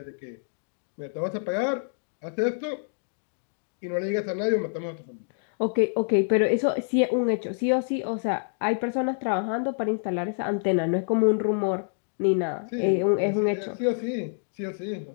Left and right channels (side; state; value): right; silent; digital silence